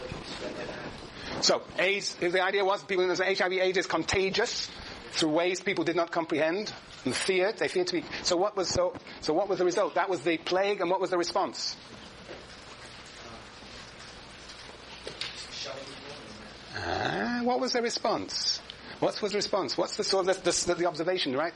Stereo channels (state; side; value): identical; both; correlation 1.00